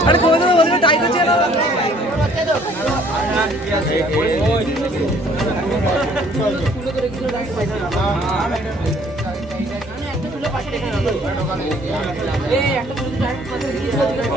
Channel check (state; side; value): normal; both; correlation 0.58